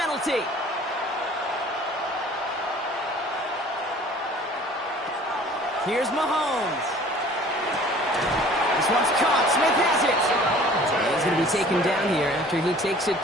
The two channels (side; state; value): both; normal; correlation 0.50